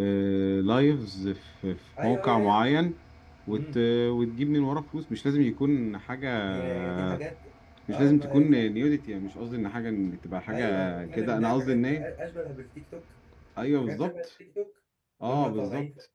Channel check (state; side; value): identical; both; correlation 1.00